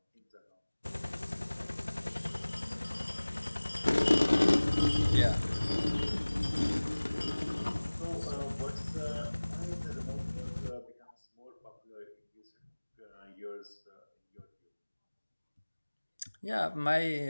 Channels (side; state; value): both; inverted; correlation -1.00